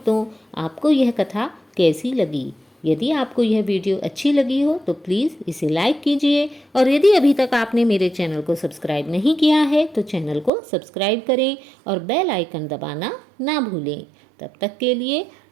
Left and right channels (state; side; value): drops out; left; at 10.5 s